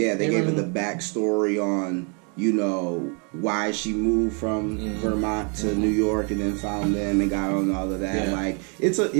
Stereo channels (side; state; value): left; quieter; 36.3 dB